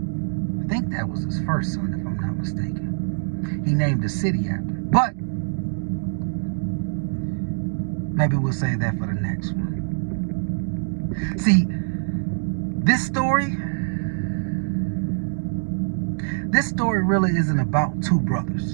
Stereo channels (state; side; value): silent; left; digital silence